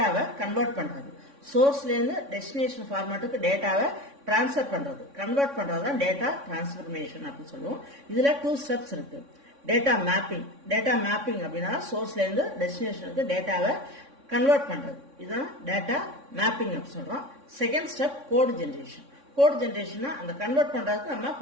கன்வெர்ட் பண்றது, சோர்ஸ்ல இருந்து டெஸ்டினேஷன் ஃபார்மேட்டுக்கு டேட்டாவை டிரான்ஸ்ஃபர் பண்றது, கன்வெர்ட் பண்றது தான் டேட்டா டிரான்ஸ்ஃபர்மேஷன் அப்படின்னு சொல்லுவோம். இதுல 2 ஸ்டெப்ஸ் இருக்கு. Data mapping. டேட்டா மேப்பிங் அப்படின்னா சோர்ஸ்ல இருந்து டெஸ்டினேஷனுக்கு டேட்டாவை கன்வெர்ட் பண்றது, இதுதான் டேட்டா மேப்பிங் அப்படி சொல்றோம். Second step code generation. Code generation அந்த கன்வெர்ட் பண்றதுக்கு நம்ம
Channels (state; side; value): late; left; 3.6 ms